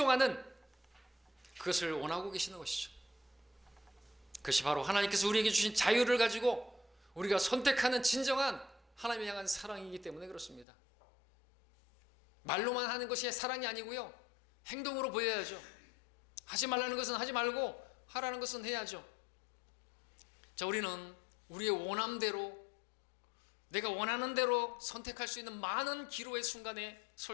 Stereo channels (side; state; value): right; drops out; at 10.7 s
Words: 그것을 원하고 계시는 것이죠. 그것이 바로 하나님께서 우리에게 주신 자유를 가지고 우리가 선택하는 진정한 하나님을 향한 사랑이기 때문에 그렇습니다. 말로만 하는 것이 사랑이 아니고요, 행동으로 보여야죠. 하지 말라는 것은 하지 말고 하라는 것은 해야죠. 자, 우리는 우리의 원함대로, 내가 원하는 대로 선택할 수 있는 많은 기로의 순간에